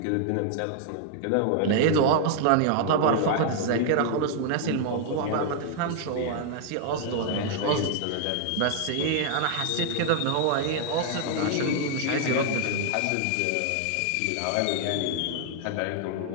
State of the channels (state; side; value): different; both; correlation 0.00